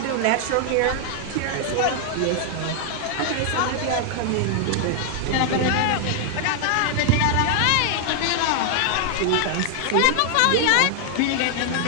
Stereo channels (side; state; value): both; different; correlation 0.00